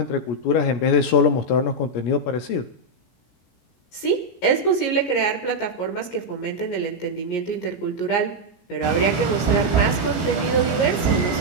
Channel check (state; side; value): late; right; 17 ms